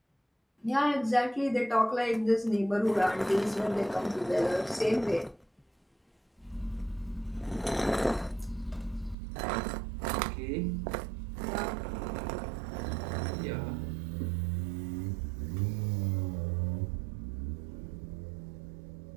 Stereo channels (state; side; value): drops out; left; at 9.2 s